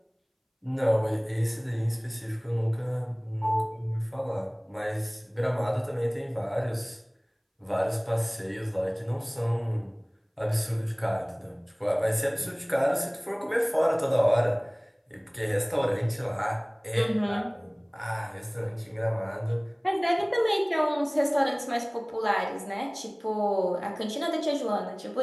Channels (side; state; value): both; identical; correlation 1.00